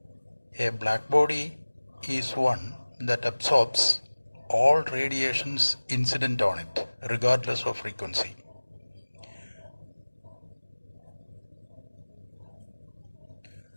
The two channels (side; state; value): both; inverted; correlation -1.00